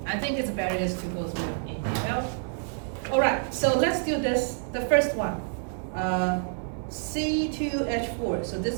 think it's better is to go through them in detail. All right, so let's do this, the first one. C2H4, so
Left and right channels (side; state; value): left; silent; 59 dB below the other